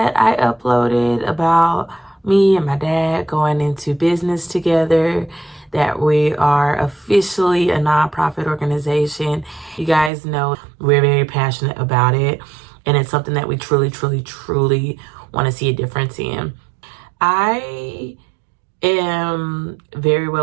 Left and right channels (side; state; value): left; drops out; at 10.1 s